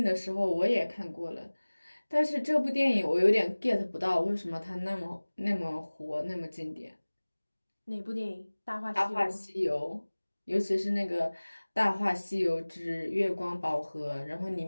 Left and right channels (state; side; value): inverted; both; correlation -1.00